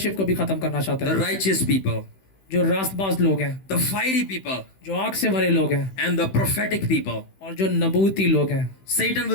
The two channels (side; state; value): right; late; 15 ms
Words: को भी ख़त्म करना चाहता The है। righteous people, जो रास्तबाज लोग हैं, the fiery people, जो आग से भरे लोग हैं and the prophetic people. और जो नबूती लोग हैं, Satan